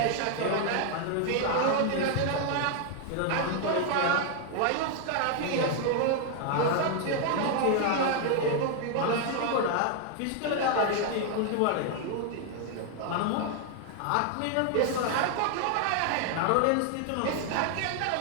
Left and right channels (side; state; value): both; different; correlation 0.00